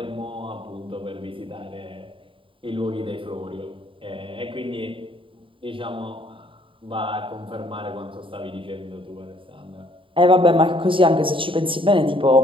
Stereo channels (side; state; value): left; late; 0.25 ms